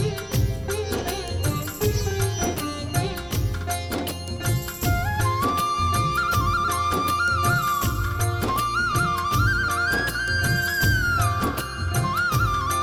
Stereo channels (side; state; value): both; identical; correlation 1.00